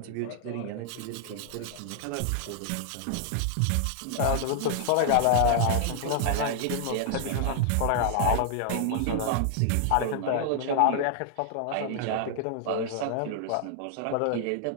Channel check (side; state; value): both; different; correlation 0.00